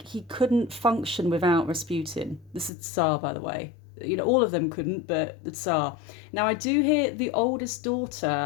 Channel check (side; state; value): right; drops out; at 2.7 s